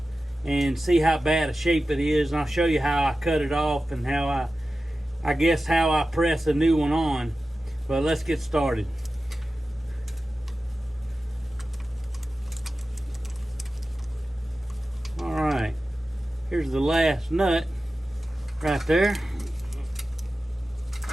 and see how bad a shape it is. And I'll show you how I cut it off and how I guess how I press a new one on. But let's get started. Alright, here's the last nut right there.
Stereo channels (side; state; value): both; normal; correlation 0.94